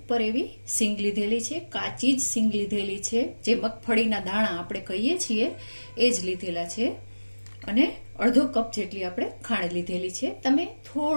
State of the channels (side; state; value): both; inverted; correlation -1.00